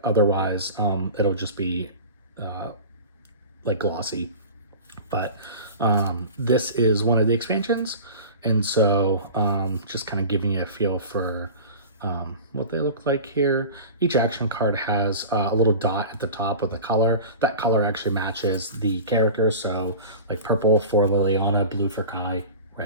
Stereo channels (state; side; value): inverted; both; correlation -0.35